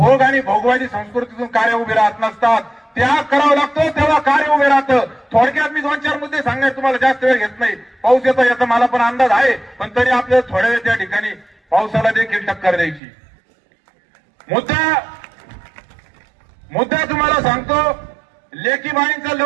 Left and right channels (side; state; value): left; drops out; at 13.0 s